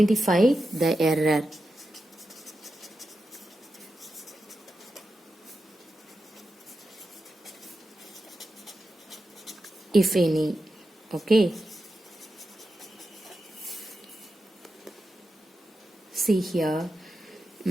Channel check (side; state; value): both; normal; correlation 0.90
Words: the error. If any. Okay. See here.